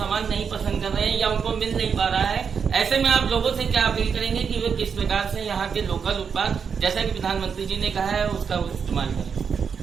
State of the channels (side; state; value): left; quieter; 6.5 dB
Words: नहीं पसंद कर रहे हैं या उनको मिल नहीं पा रहा है। ऐसे में आप लोगों से क्या अपील करेंगे कि वे किस प्रकार से यहाँ के लोकल उत्पाद, जैसा कि प्रधानमंत्री जी ने कहा है, उसका इस्तेमाल